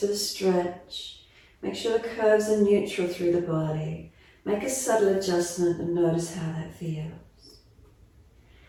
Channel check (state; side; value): identical; both; correlation 1.00